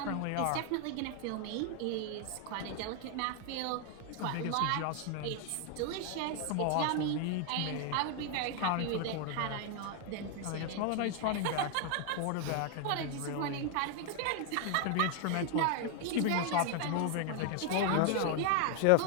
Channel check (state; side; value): different; both; correlation 0.00